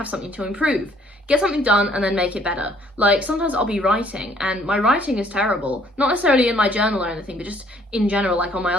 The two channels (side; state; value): both; normal; correlation 0.62